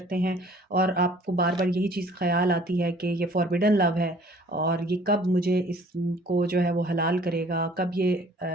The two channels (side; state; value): both; normal; correlation 0.54